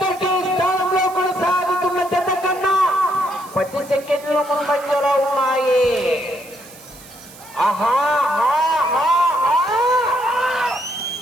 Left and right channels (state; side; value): noise; right; hiss, 20 dB below the sound